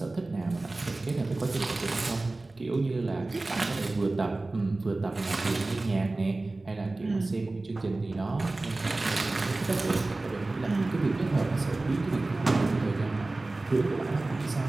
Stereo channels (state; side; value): quieter; left; 3.1 dB